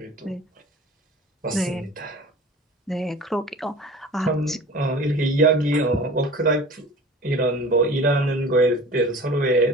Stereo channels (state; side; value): normal; both; correlation 0.40